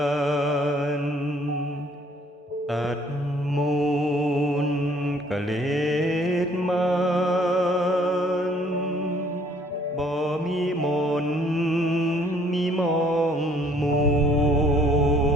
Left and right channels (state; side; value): normal; both; correlation 0.60